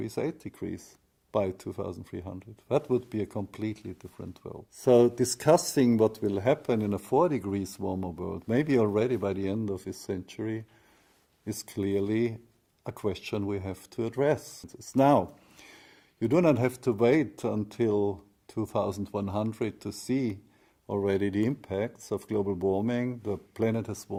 8 degrees by 2300. That would be a completely different world. So discussing what will happen in a 4 degrees warmer world, maybe already by the end of this century, is clearly a question we have to address. It's now. You do not have to wait until 2100 to see already the impacts of global warming. The planet has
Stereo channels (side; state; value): both; identical; correlation 1.00